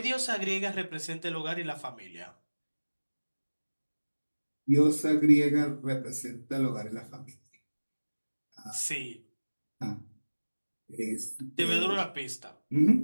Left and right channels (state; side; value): inverted; both; correlation -1.00